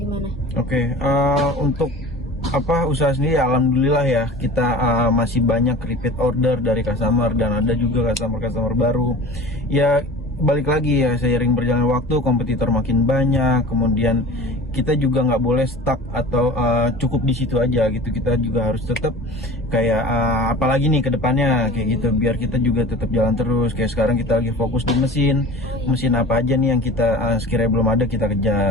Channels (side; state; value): both; normal; correlation 0.39